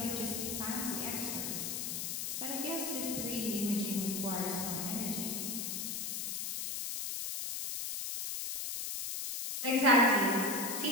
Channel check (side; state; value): left; noise; hiss, 3 dB below the sound